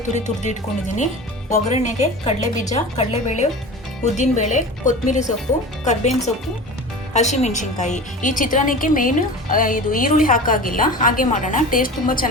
ತುರ್ದು ಇಟ್ಕೊಂಡಿದ್ದೀನಿ. ಒಗ್ಗರಣೆಗೆ ಕಡಲೆಬೀಜ, ಕಡಲೆಬೇಳೆ, ಉದ್ದಿನಬೇಳೆ, ಕೊತ್ತಂಬರಿ ಸೊಪ್ಪು, ಕರ್ಬೇವಿನ ಸೊಪ್ಪು, ಹಸಿಮೆಣಸಿನ್ಕಾಯಿ. ಈ ಚಿತ್ರಾನ್ನಕ್ಕೆ ಮೇನ್ ಇದು ಈರುಳ್ಳಿ ಹಾಕಾಗಿಲ್ಲ, ಹಾಗೆ ಮಾಡೋಣ. ಟೇಸ್ಟ್ ತುಂಬ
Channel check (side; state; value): both; normal; correlation 0.34